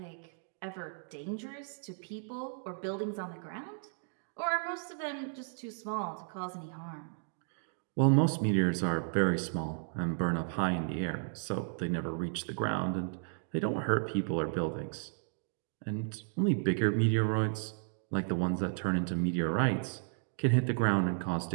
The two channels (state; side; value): silent; left; 55 dB below the other